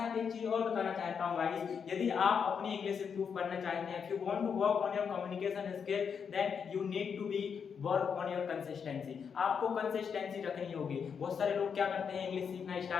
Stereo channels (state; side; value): quieter; right; 6.7 dB